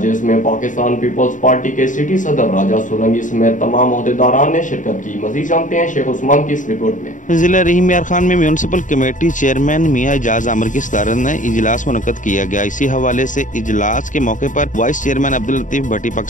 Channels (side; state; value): right; late; 0.37 ms